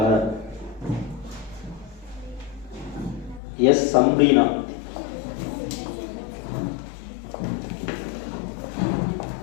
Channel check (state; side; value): drops out; right; at 3.4 s